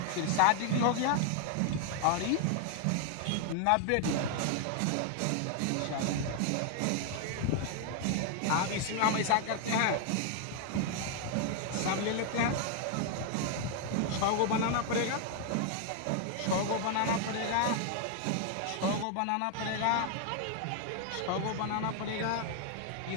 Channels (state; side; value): different; both; correlation 0.00